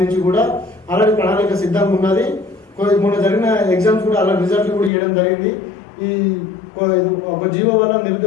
కూడా అలాంటి ప్రణాళిక సిద్ధంగా ఉన్నది. మొన్న జరిగిన ఎగ్జామ్స్ కూడా అలా రిజల్ట్లు కూడా ఇవ్వడం జరిగింది. ఈ ఒక జీవో వల్ల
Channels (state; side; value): drops out; right; at 4.9 s